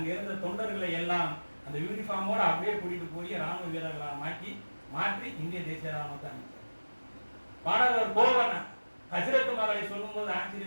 இருந்த தொண்டர்களை எல்லாம் அந்த யூனிஃபார்மோட அப்படியே கூட்டிட்டு போய் ராணுவ வீரர்களாக மாற்றி இந்திய தேசிய ராணுவத்தை அமைச்சார். பாடகர் கோவன் ஹஜ்ரத் மகளை சொல்லும் போது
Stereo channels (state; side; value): inverted; both; correlation -1.00